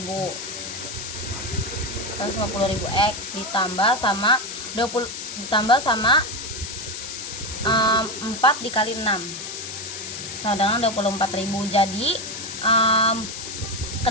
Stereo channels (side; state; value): left; noise; hiss, 8 dB below the sound